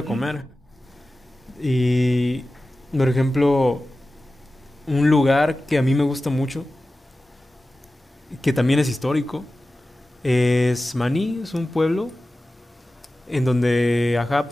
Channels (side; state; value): both; normal; correlation 0.95